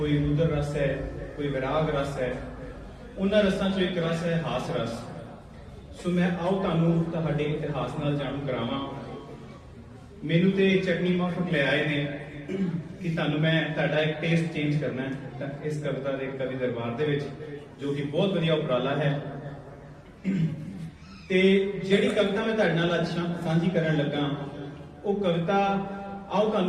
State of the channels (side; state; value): both; identical; correlation 1.00